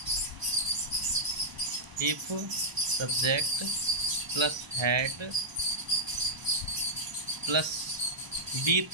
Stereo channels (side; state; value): left; late; 1.0 ms